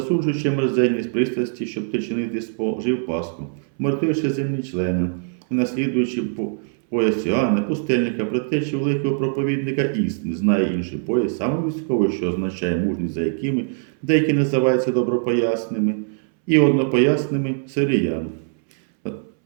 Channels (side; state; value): left; silent; 64 dB below the other